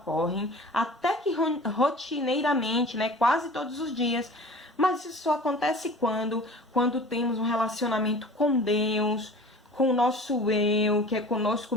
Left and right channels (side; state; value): both; normal; correlation 0.42